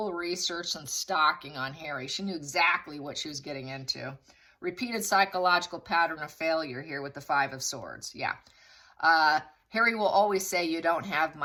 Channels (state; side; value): identical; both; correlation 1.00